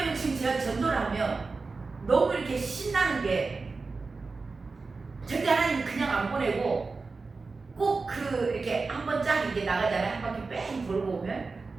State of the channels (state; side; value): quieter; left; 4.1 dB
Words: 지금 제가 전도를 하면 너무 이렇게 신나는 게 절대 하나님 그냥 안 보내고 꼭 이렇게 한 번 쫙 이렇게 나가잖아요. 한 바퀴 뺑